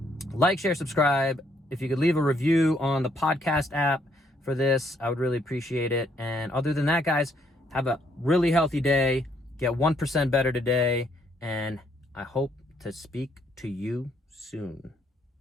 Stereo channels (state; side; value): normal; both; correlation 0.70